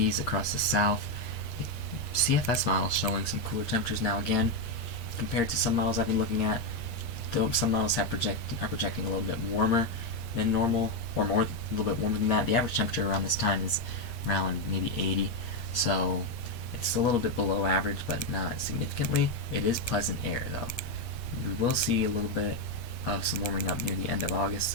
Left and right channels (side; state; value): right; late; 8.5 ms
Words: across the south. The CFS model showing some cooler temperatures now again, compared to some models I've been looking at. Though some models are projecting a little bit warmer than normal, or a little bit warmer than that. The average temperature around this time is around maybe 80, so it's a little bit below average, but not significantly. It is pleasant air, though. We will see a little bit of some warming up near the end of August,